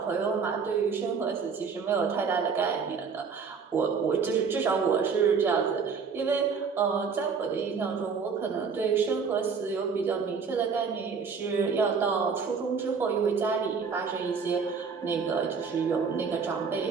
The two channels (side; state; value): left; quieter; 5.6 dB